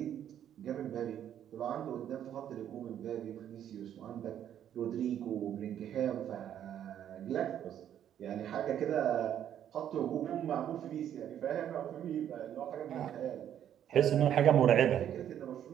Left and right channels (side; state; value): left; quieter; 10.2 dB